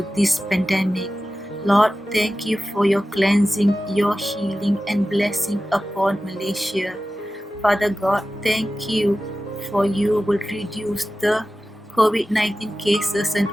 this pandemic. Lord, thank you for your cleansing, your healing and blessing upon Malaysia. Father God, thank you for you will reduce the COVID-19 cases and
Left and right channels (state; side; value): normal; both; correlation 0.95